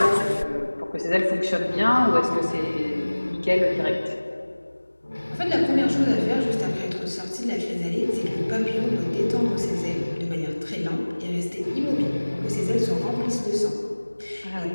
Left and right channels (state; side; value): inverted; both; correlation -1.00